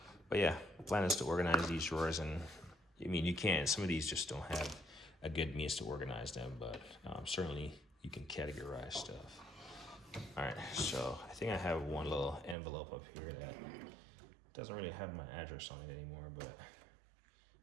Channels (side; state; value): left; drops out; at 12.6 s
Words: But yeah, the plan is to organize these drawers, and I mean, you can. Some of these just don't have a good means to organize them, but certainly you can categorize stuff. All right, so I think I have one little envelope up here that doesn't really have my address on it anymore, but